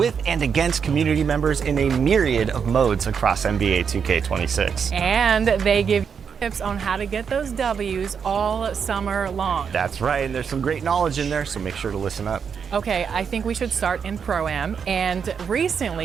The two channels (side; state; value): left; quieter; 6.7 dB